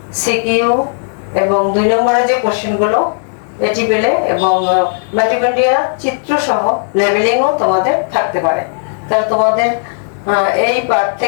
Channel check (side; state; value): right; silent; digital silence